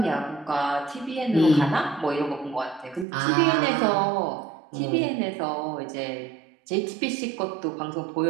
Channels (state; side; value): drops out; left; at 3.1 s